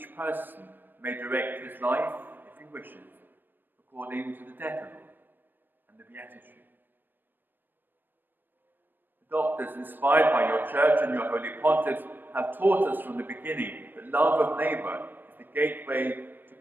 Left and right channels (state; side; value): late; left; 0.093 ms